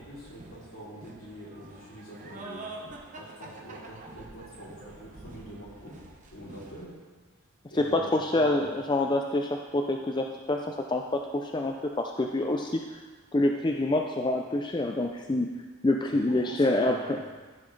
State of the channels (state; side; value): normal; both; correlation 0.63